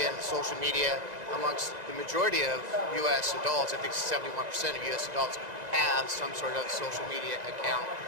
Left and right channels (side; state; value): left; late; 1.9 ms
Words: and social media amongst the majority of U.S. adults, I think 71% of U.S. adults have some sort of social media account.